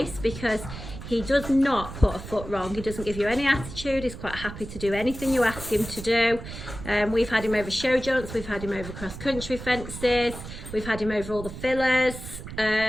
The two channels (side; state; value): right; noise; rumble, 11 dB below the sound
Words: because he does not put a foot wrong. He doesn't give you any attitude. He's quite happy to do anything you ask him to do. We've had him over show jumps, we've had him over cross-country fences, we've had him over all the fillers,